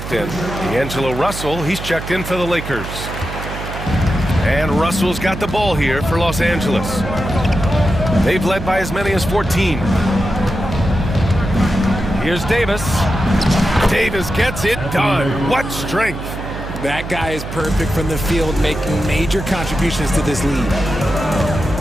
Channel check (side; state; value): right; noise; hum, 9 dB below the sound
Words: in. D'Angelo Russell, he's checked in for the Lakers. And Russell's got the ball here for Los Angeles. They've led by as many as 14. Here's Davis. Davis gets it done. What strength. That guy is perfect from the field, making major contributions to this league.